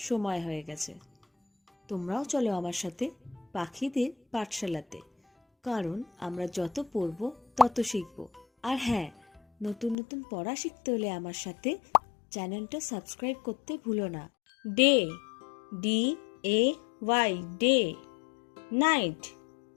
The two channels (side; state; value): right; drops out; at 10.0 s